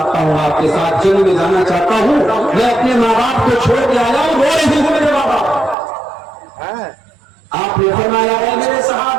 हूँ, आपके साथ जंग में जाना चाहता हूँ, मैं अपने माँ बाप को छोड़ के आया हूँ, रो रही हूँ मेरे माँ बाप। आपने फरमाया, है मेरे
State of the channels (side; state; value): left; drops out; at 5.8 s